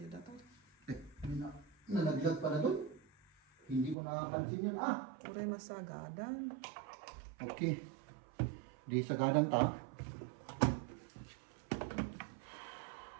data. Nalaglag pala doon. Hindi ko nakapansin yun. Uray masagadan. Okay. Di sagadan ta.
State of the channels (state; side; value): drops out; left; at 4.0 s